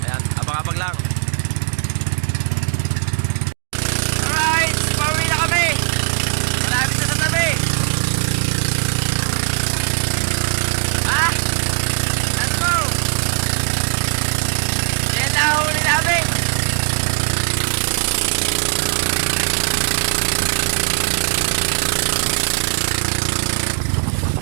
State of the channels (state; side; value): silent; left; digital silence